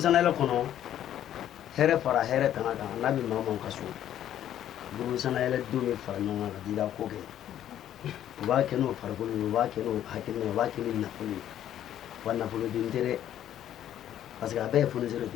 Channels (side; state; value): right; quieter; 11.2 dB